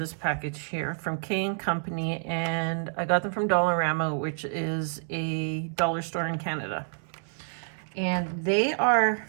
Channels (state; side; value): silent; left; 59 dB below the other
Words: package here from K & Company, and I got them from Dollarama, which is a dollar store in Canada. And they are